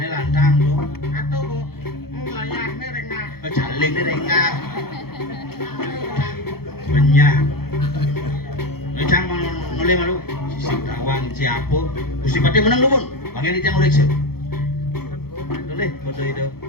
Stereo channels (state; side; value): late; right; 0.95 ms